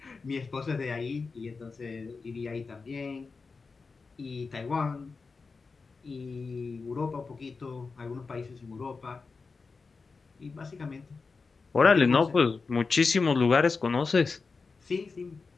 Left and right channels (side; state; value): right; quieter; 4.5 dB